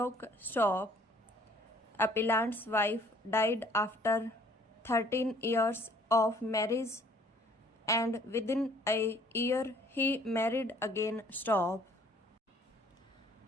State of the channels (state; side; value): normal; both; correlation 0.58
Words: Stop. Appellant's wife died after 13 years of marriage and within a year he married again. Stop.